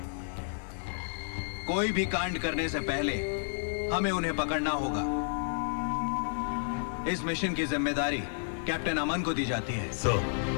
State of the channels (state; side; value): silent; right; 57 dB below the other